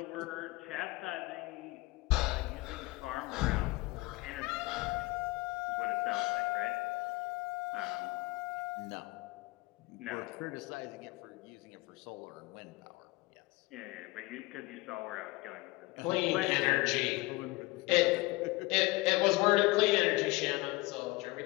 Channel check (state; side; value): quieter; right; 22.1 dB